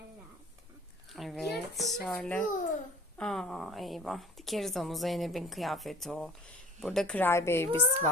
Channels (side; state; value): both; normal; correlation 0.45